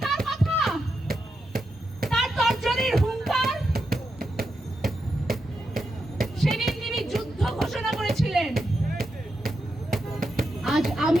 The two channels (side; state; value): both; normal; correlation 0.86